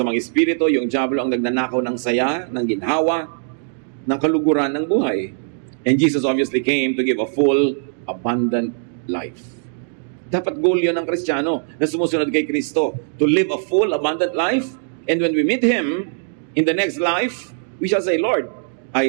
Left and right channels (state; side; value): silent; left; digital silence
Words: espiritu, yung diablo ang nagnanakaw ng saya, ng ginhawa, ng kaluguran ng buhay. And Jesus obviously came to give a full, abundant life. Dapat goal yun ng Kristiyano na sumusunod kay Kristo, to live a full, abundant life. And when we meet Him in the next life, we shall say, Lord,